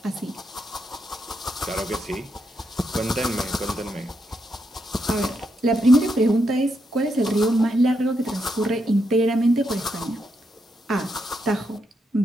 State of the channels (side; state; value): both; normal; correlation 0.81